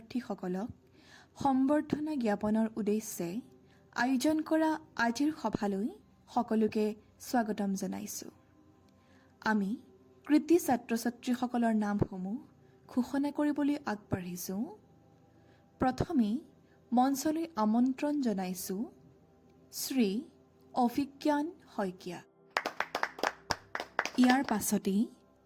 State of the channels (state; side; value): identical; both; correlation 1.00